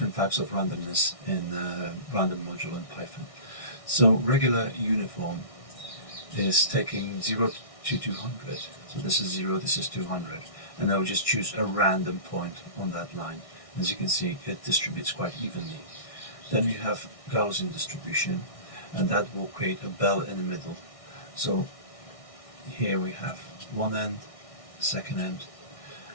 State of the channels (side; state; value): right; late; 1.6 ms